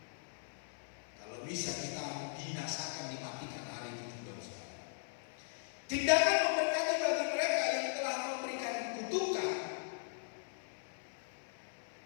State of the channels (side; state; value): right; silent; 52 dB below the other